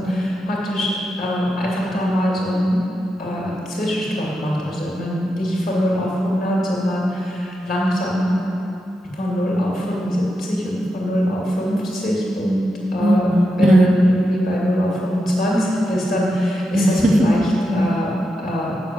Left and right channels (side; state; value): both; normal; correlation 0.87